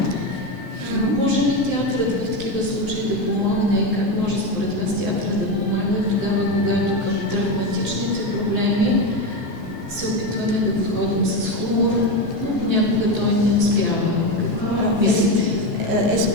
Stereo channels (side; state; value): both; normal; correlation 0.15